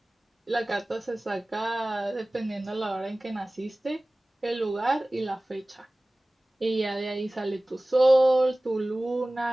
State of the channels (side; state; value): both; normal; correlation 0.98